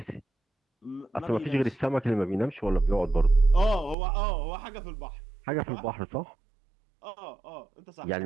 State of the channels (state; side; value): drops out; left; at 4.0 s